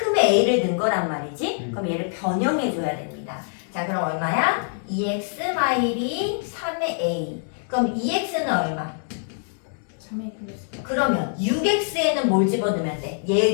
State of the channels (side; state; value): right; silent; digital silence